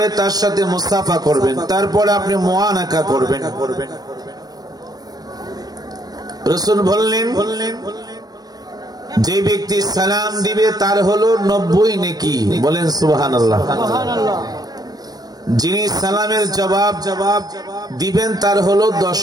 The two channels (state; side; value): late; left; 0.19 ms